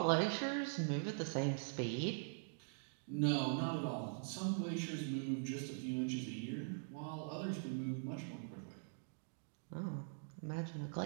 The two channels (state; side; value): silent; left; digital silence